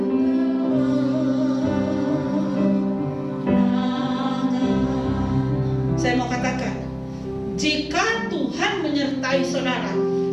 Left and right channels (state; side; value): identical; both; correlation 1.00